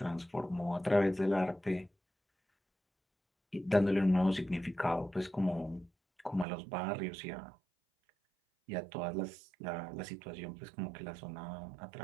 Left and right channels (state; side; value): drops out; left; at 6.5 s